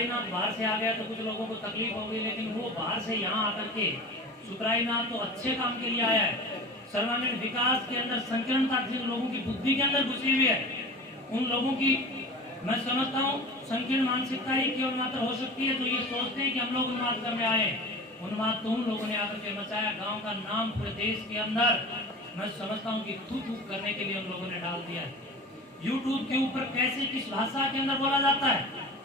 बाहर से आ गया तो कुछ लोगों को तकलीफ होगी, लेकिन वो बाहर से यहाँ आकर के सुखरायनाथ तो अच्छे काम के लिए आया है। सर्वांगीण विकास के अंदर संकीर्णता जिन लोगों की बुद्धि के अंदर घुसी हुई है, उन लोगों की मैं समझता हूँ संकीर्ण मानसिकता ही केवल मात्र हो सकती है जो ये सोचते हैं कि हम लोग उन्माद करने आए। उन्माद तो उन लोगों ने आकर के मचाया, गांव का नाम पूरे देश के अंदर मैं समझता हूँ कि थू करने के लिए उन लोगों ने डाल दिया है। यूट्यूब के ऊपर कैसे किस भाषा के अंदर बोला जाता है,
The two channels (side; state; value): both; normal; correlation 0.35